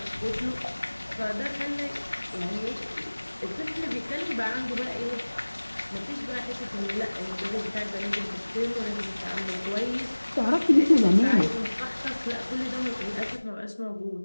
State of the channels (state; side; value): inverted; both; correlation -1.00